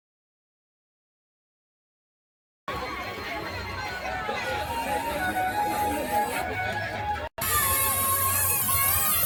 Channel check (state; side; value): identical; both; correlation 1.00